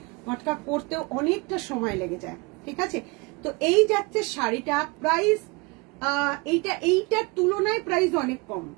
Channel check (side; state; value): left; quieter; 27.1 dB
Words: মটকা করতেও অনেকটা সময় লেগে যায়, ঠিক আছে। তো এই যাচ্ছে শাড়িটা। প্রাইস এইটার তুলনায় প্রাইস অনেক কম।